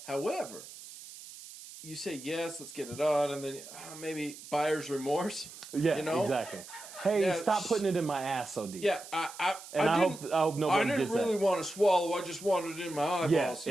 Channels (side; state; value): right; noise; hiss, 15 dB below the sound